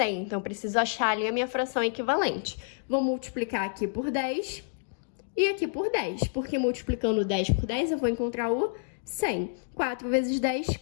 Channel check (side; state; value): right; silent; digital silence